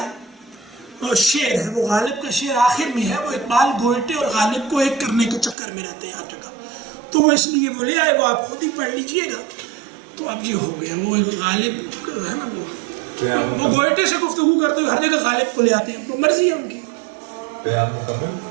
اور شعر ہے. وہ غالب کا شعر آخر میں ہے. وہ اقبال گوئٹے اور غالب کو ایک کرنے کے چکر میں رہتے ہیں ہر جگہ، تو وہ اس لیے وہ لے آئے. وہ آپ خود ہی پڑھ لیجئے گا. تو اب یہ ہو گیا. وہ غالب ہے نا، وہ گوئٹے سے گفتگو کرتے ہوئے ہر جگہ غالب کو لے آتے ہیں. تو مرضی ہے ان کی. پیام مکمل.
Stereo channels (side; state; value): left; drops out; at 5.6 s